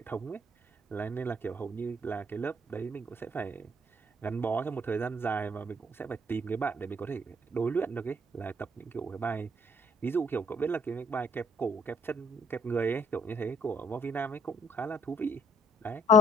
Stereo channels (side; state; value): both; normal; correlation 0.63